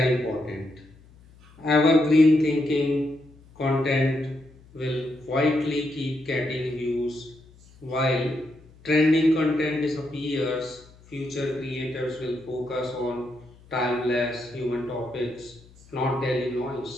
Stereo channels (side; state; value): left; noise; hum, 25 dB below the sound